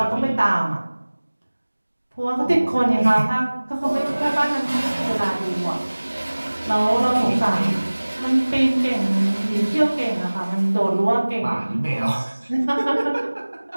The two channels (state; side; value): inverted; both; correlation -1.00